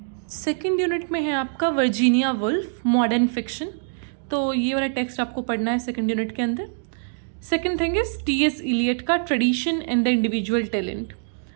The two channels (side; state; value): left; silent; digital silence